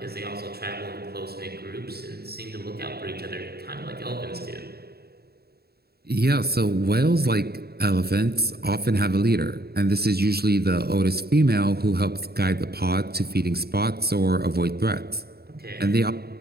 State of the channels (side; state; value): left; late; 0.46 ms